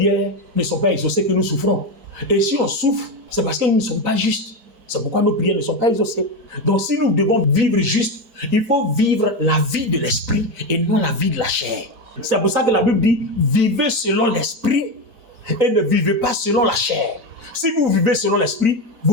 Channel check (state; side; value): late; left; 4.0 ms